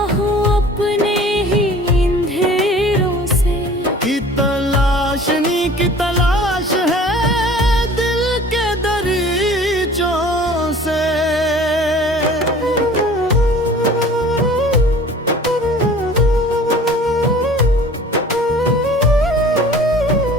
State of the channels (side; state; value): both; normal; correlation 0.47